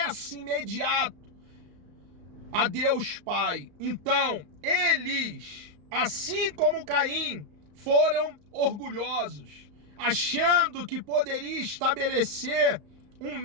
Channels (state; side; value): late; left; 34 ms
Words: imediato a Deus Pai. Então, eles, assim como Caim, foram orgulhosos, achando que poderia estabelecer um